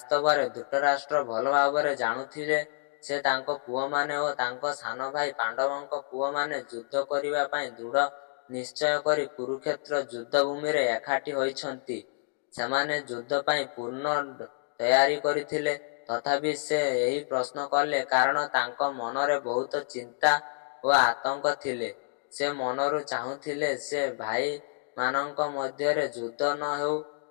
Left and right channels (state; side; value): silent; right; digital silence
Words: ଧୃତରାଷ୍ଟ୍ର ଭଲ ଭାବରେ ଜାଣୁଥିଲେ ଯେ ତାଙ୍କ ପୁଅମାନେ ଓ ତାଙ୍କ ସାନ ଭାଇ ପାଣ୍ଡବଙ୍କ ପୁଅମାନେ ଯୁଦ୍ଧ କରିବା ପାଇଁ ଦୃଢ଼ ନିଶ୍ଚୟ କରି କୁରୁକ୍ଷେତ୍ର ଯୁଦ୍ଧଭୂମିରେ ଏକାଠି ହୋଇଛନ୍ତି। ସେମାନେ ଯୁଦ୍ଧ ପାଇଁ ପୂର୍ଣ୍ଣ ତୟାରୀ କରିଥିଲେ। ତଥାପି ସେ ଏହି ପ୍ରଶ୍ନ କଲେ କାରଣ ତାଙ୍କ ମନରେ ବହୁତ ଚିନ୍ତା ଓ ଆତଙ୍କ ଥିଲେ। ସେ ମନରୁ ଚାହୁଁଥିଲେ ଯେ ଭାଇମାନଙ୍କ ମଧ୍ୟରେ ଯୁଦ୍ଧ ନ ହେଉ।